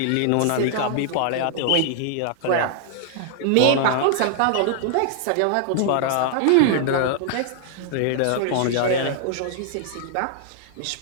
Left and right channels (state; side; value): different; both; correlation -0.01